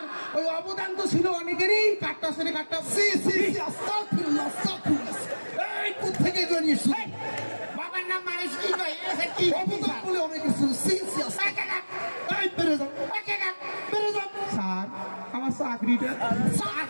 ওই অবদান তো ছিল অনেকেরই, কাটটা সেরে কাটটা। সি সি সি, আস্তাগফিরুল্লাহ আস্তাগফিরুল্লাহ। এই কোত্থেকে জড়িয়ে শুনি? বাবার নাম মানুষ কি কয়? এসে কি? অবদান বলে অনেক কিছু। সি সি আস্তাগফিরুল্লাহ। এই বেরে যাও, বেরে যাও। স্যার আমার চাকরিটা।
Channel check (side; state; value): both; inverted; correlation -1.00